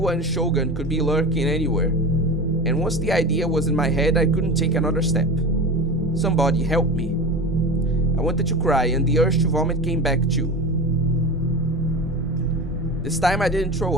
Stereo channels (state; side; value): normal; both; correlation 0.29